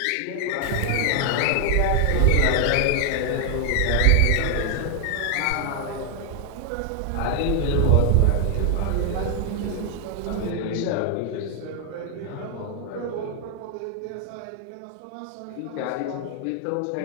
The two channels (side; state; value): both; different; correlation 0.01